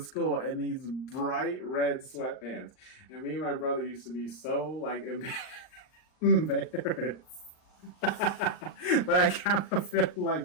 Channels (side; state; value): right; late; 39 ms